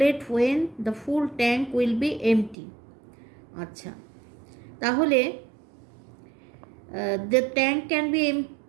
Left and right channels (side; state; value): left; drops out; at 2.6 s